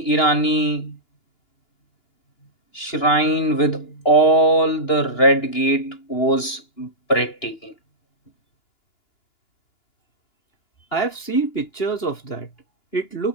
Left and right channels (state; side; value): late; right; 2.9 ms